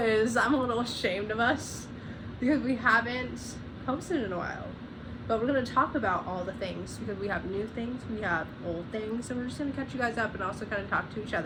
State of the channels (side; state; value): both; identical; correlation 1.00